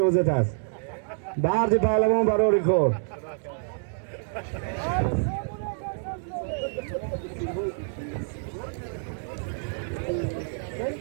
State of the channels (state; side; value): silent; left; digital silence